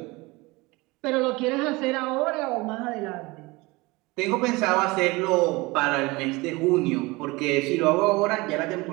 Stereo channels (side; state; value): left; quieter; 23.2 dB